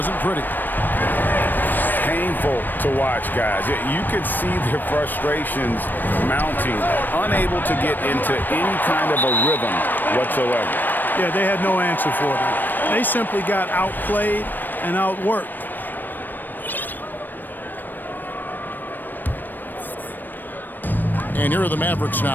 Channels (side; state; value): right; late; 0.091 ms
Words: pretty. Painful to watch, guys. You could see their frustrations mounting, unable to get into any kind of a rhythm whatsoever. Yeah, they had no answer for them. They simply got outplayed and outworked. And here are the Mavericks